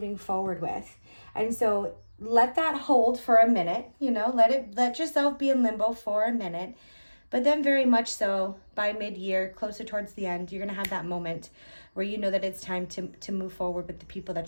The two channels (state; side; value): inverted; both; correlation -1.00